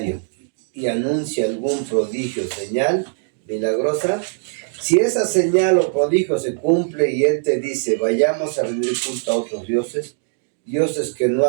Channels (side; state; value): left; silent; digital silence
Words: y anuncie algún prodigio, señal milagrosa, si esa señal o prodigio se cumple y él te dice, vayamos a rendir culto a otros dioses que no